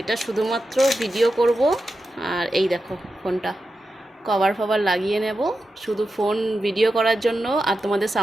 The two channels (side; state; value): both; normal; correlation 0.90